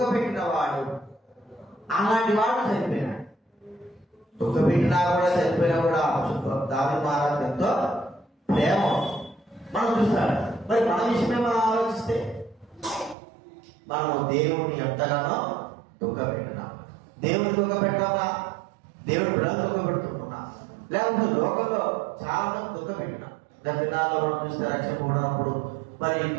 పెట్టిన వాడు, అలాంటి వాడు చనిపోయినాడు. దుఃఖ పెట్టినా కూడా చనిపోయినా కూడా దావీదు మహారాజు ఎంతో ప్రేమ మనం చూస్తాడు. మరి మన విషయమే మనం ఆలోచిస్తే మనము దేవుని ఎంతగానో దుఃఖ పెట్టినాం. దేవుని దుఃఖ పెట్టామా, దేవుని బిడ్డలు దుఃఖ పెడుతున్నా, లేకపోతే లోకంలో చాలా మంది దుఃఖ పెట్టినాం. దినాల్లో మనం చూస్తే రక్షణ ఉన్నప్పుడు మరి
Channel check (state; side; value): drops out; left; at 13.2 s